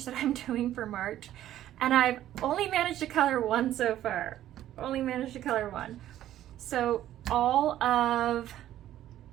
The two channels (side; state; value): left; quieter; 12.6 dB